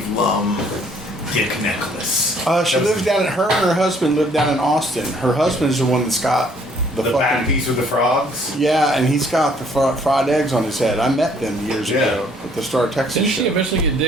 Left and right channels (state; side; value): normal; both; correlation 0.62